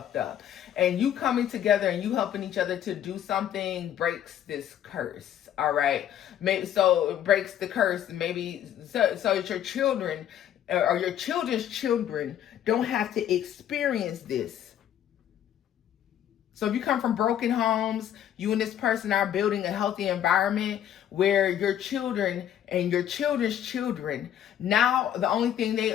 up. And you coming together and you helping each other to do something breaks this curse, all right? Maybe so it breaks the curse, maybe so that your children or your children's children don't have to experience this. So if you come from broken homes, you and this person are building a healthy environment where your children and your children's children, now the only thing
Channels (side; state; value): right; quieter; 10.5 dB